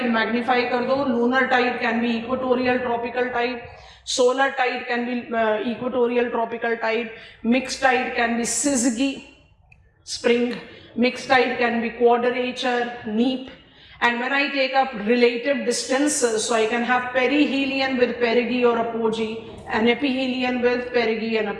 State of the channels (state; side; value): identical; both; correlation 1.00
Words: Magnify कर दो. Lunar tide can be equatorial tropical tide, solar tide can be equatorial tropical tide, mix tide can be syzygy spring, mix tide can be quadrature neap. And when I take up relative distances, so I can have perihelion with perigee or apogee, and ephelion with perigee and